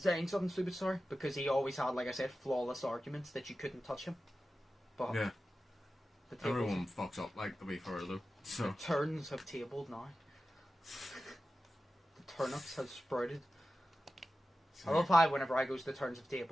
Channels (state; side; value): normal; both; correlation 0.94